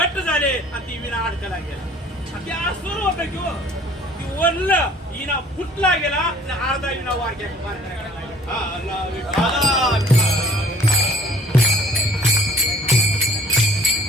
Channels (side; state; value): both; normal; correlation 0.53